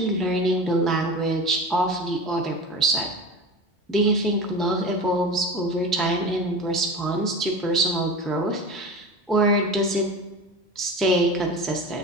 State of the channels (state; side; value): normal; both; correlation 0.31